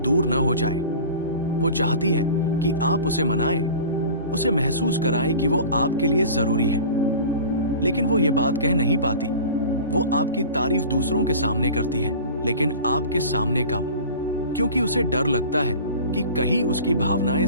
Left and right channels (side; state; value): both; inverted; correlation -0.38